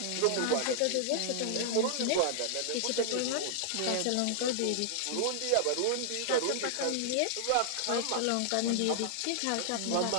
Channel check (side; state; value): both; different; correlation 0.00